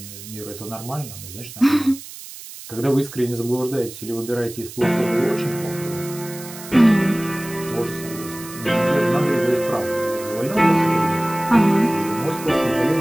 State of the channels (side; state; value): right; noise; hiss, 14 dB below the sound